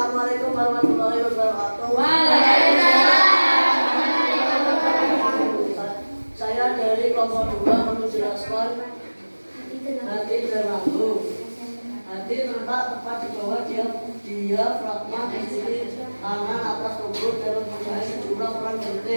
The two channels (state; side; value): inverted; both; correlation -1.00